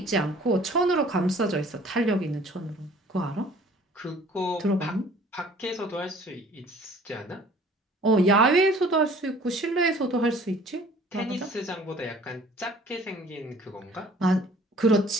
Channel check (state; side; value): normal; both; correlation 0.52